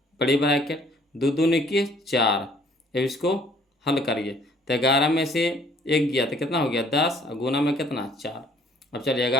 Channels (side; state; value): both; normal; correlation 0.59